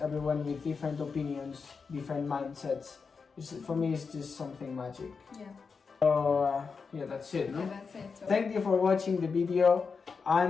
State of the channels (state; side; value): quieter; right; 5.2 dB